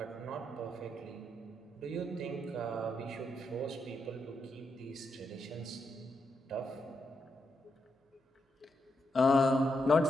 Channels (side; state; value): both; normal; correlation 0.82